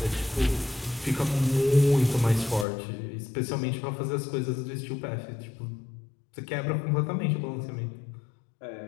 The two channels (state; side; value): drops out; right; at 2.7 s